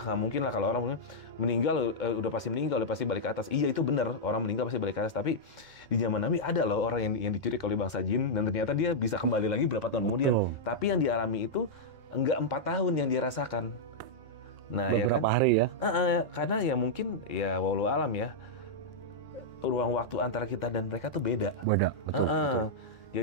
mungkin lah kalau orang meninggal udah pasti meninggal, udah pasti balik ke atas. Iya itu benar, orang meninggal pasti balik ke atas. Tapi di zaman Nabi ada loh orang yang diculik oleh bangsa jin dan ternyata dia bisa kembali lagi berapa tahun kemudian. Tapi yang dialami itu enggak 4 tahun yang dirasakan. Nah, beberapa ya kan? hari ya. Karena ya mungkin ya walau alam ya, ruang waktu antara kita dan mereka tuh beda. Betul.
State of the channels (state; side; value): normal; both; correlation -0.07